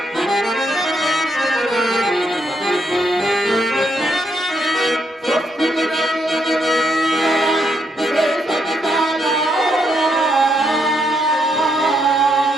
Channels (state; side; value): normal; both; correlation 0.76